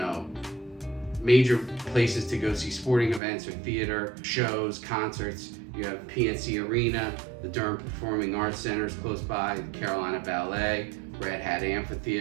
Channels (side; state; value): left; drops out; at 3.2 s